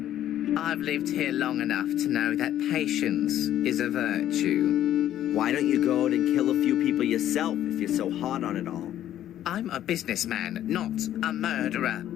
I've lived here long enough to know that patience is a virtue. Why don't you go out and kill a few people yourself if you're so hot on it all? I'm a businessman, not a murderer.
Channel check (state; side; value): quieter; right; 11.9 dB